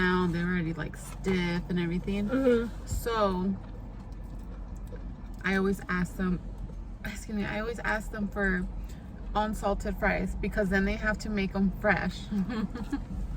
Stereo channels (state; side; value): identical; both; correlation 1.00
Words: they're already like stiff and everything. So I always ask them, I always ask them for unsalted fries because then they have to make them fresh.